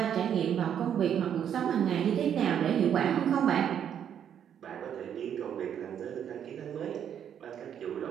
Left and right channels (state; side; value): quieter; left; 9.1 dB